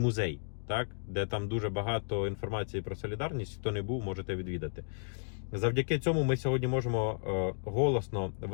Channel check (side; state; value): right; silent; digital silence